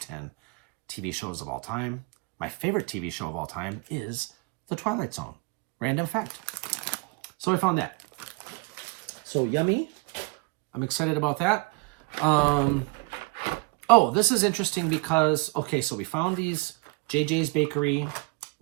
10 TV shows of all time. My favorite TV show of all time is The Twilight Zone. Random fact. So I found that. So yummy. I'm excited about that. Oh, this is interesting because, okay, so we found these JJs Bakery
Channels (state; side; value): quieter; left; 27.6 dB